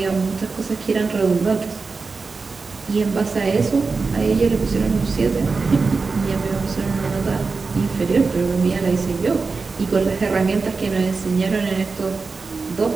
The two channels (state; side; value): quieter; left; 4.4 dB